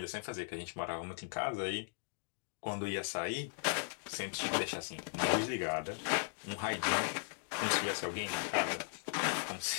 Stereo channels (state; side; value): silent; right; digital silence